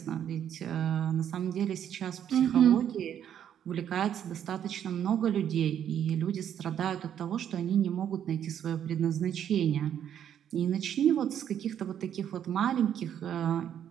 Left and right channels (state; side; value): quieter; left; 9.6 dB